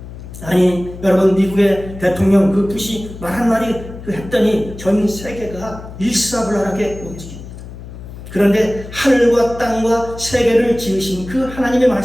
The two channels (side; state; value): left; noise; hum, 13 dB below the sound